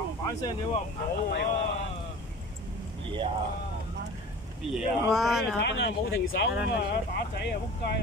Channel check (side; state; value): both; normal; correlation 0.39